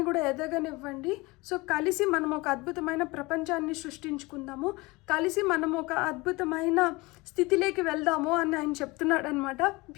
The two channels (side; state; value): right; quieter; 23.3 dB